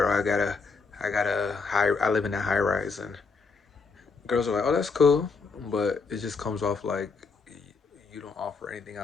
I got a high, I live in a high rise, and girls are like, oh, that's cool, but it just comes off like you don't offer anything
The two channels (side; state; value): right; quieter; 4.7 dB